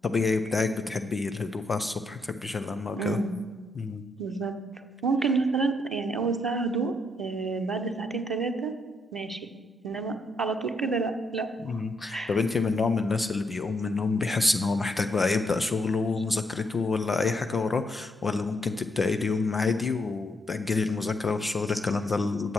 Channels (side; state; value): both; normal; correlation 0.77